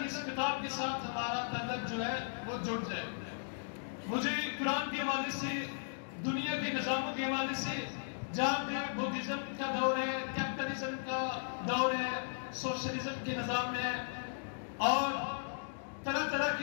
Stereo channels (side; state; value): right; silent; digital silence